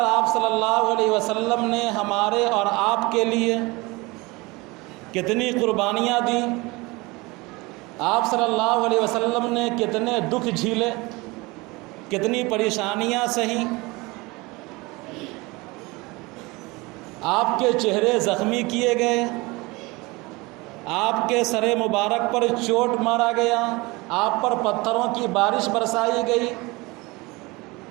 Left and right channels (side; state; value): left; quieter; 23.9 dB